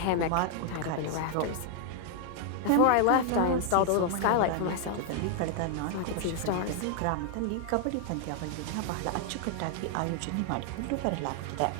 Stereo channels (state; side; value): different; both; correlation 0.00